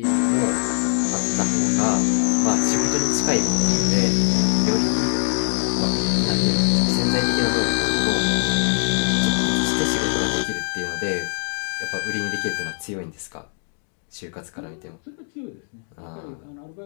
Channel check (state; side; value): silent; right; digital silence